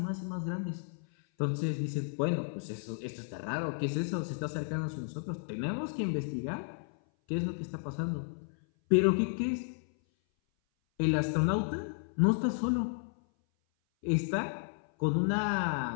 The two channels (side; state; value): right; silent; 56 dB below the other